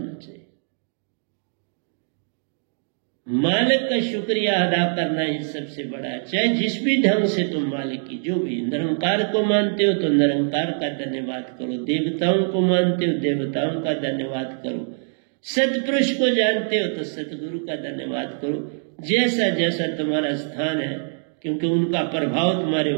चाहिए। मालिक का शुक्रिया अदा करना ही सबसे बड़ा है। चाहे जिस भी ढंग से तुम मालिक की, जो भी निरंकार को मानते हो तो निरंकार का धन्यवाद करो, देवताओं को मानते हो देवताओं का धन्यवाद करो, सतपुरुष को जानते हो तो सतगुरु का धन्यवाद करो, जैसा जैसा तुम्हारा स्थान है, क्योंकि उनका प्रभाव तुम्हारे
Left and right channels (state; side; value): silent; left; 63 dB below the other